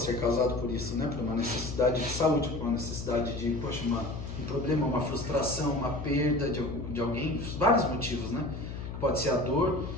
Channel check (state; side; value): noise; left; hum, 7 dB below the sound